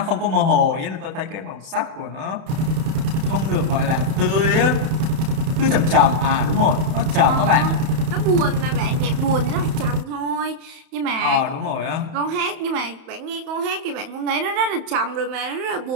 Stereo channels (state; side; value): late; left; 31 ms